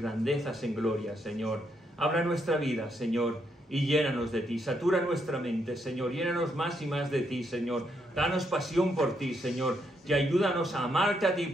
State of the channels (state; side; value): normal; both; correlation 0.77